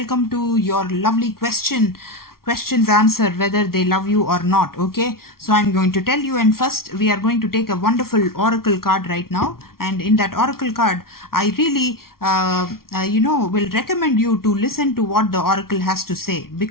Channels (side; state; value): right; late; 0.93 ms